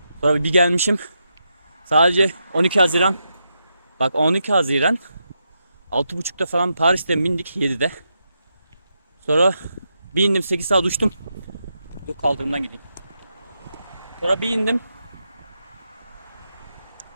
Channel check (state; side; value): inverted; both; correlation -0.84